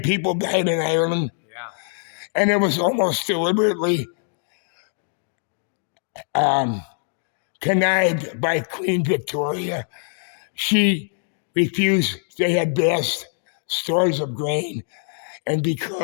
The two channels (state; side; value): silent; right; digital silence